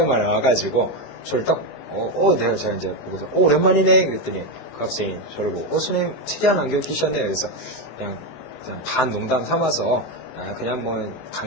와가지고 저를 딱 제가 이제 보고서 오랜만이네 그랬더니 그 학생이 저를 보고 선생님 특이한 안경 끼셨네요. 그래서 그냥 반 농담 삼아서 그냥 뭐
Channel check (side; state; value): right; late; 19 ms